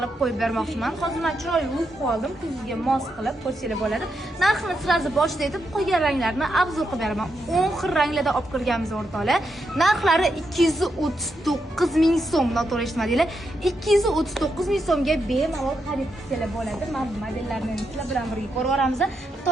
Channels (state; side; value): normal; both; correlation 0.83